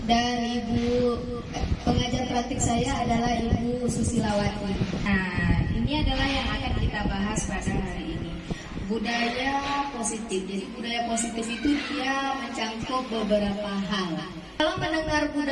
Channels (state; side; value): identical; both; correlation 1.00